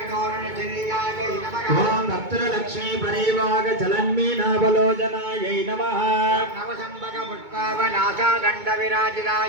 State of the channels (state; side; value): late; left; 2.2 ms